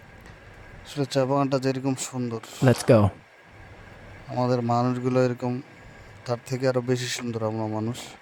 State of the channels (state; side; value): identical; both; correlation 1.00